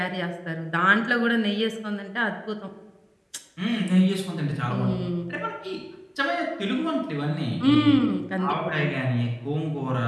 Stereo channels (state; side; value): identical; both; correlation 1.00